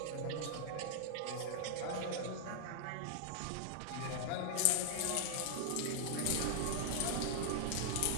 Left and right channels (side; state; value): both; different; correlation -0.01